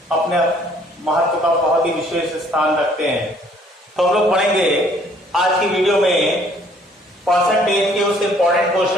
अपने महत्व का बहुत ही विशेष स्थान रखते हैं। तो हम लोग पढ़ेंगे आज की वीडियो में परसेंटेज के उस इंपॉर्टेंट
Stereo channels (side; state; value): both; normal; correlation 0.60